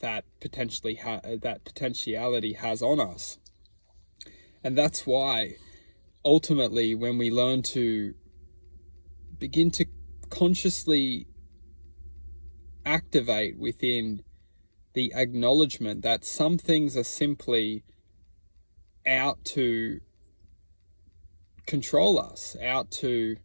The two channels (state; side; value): inverted; both; correlation -1.00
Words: potentiality has on us. And that's why ultimately, when we learn to begin to consciously activate within the acknowledgement that some things are simply out to control us, out to